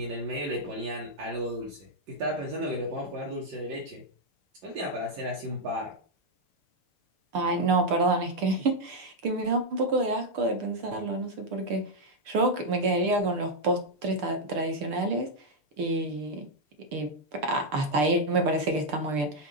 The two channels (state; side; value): late; left; 6.7 ms